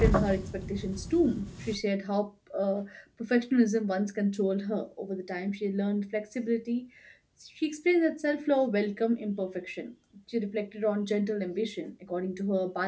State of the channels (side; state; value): both; identical; correlation 1.00